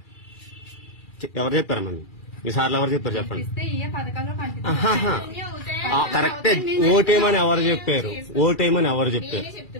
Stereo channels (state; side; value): late; right; 2.4 ms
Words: ఎవరు చెప్పారమ్మా? ఈసార్లు ఎవరు చెప్పారు చెప్పండి. కరెక్టే, ఓటేయమని ఎవరు చెప్పారు? ఓటేయమని ఎవరు చెప్పారు?